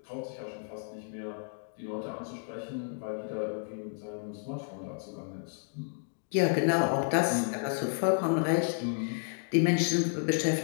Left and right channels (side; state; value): right; silent; digital silence